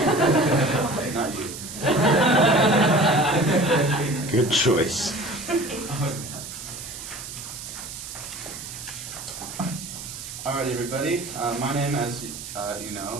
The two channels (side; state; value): right; noise; hiss, 10 dB below the sound